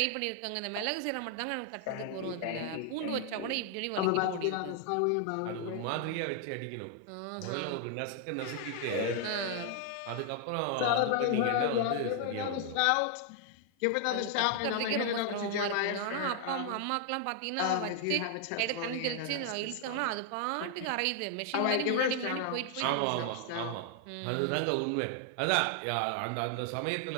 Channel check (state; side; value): different; both; correlation 0.00